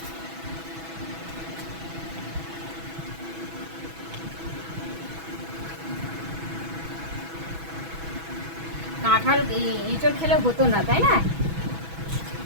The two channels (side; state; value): left; late; 6.1 ms